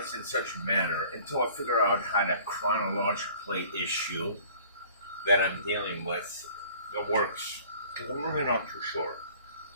in such a manner until I figure out how to chronologically issue that I'm dealing with that works. Because I'm really not too sure.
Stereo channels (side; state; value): both; inverted; correlation -0.51